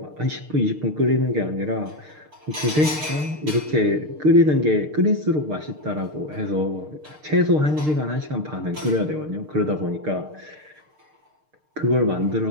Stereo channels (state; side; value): late; left; 6.6 ms